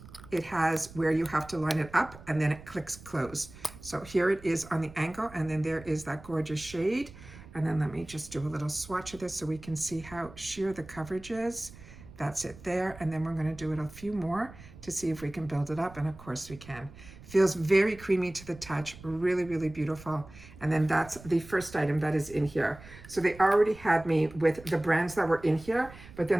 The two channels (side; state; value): right; noise; rumble, 18 dB below the sound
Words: it has where you have to line it up and then it clicks close. So here it is on the angle, and then there is that gorgeous shade. And then let me just do a little swatch of this so we can see how sheer the coverage is. That's it there. And then we're going to do it a few more to see if we can build it up. And of course we can. Feels very creamy to the touch, really, really beautiful. And then that's the first item that is in here. So they already had me with the brands that were in here, but